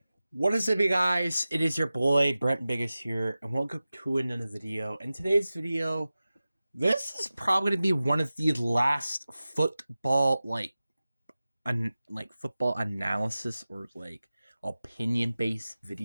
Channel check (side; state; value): both; inverted; correlation -0.95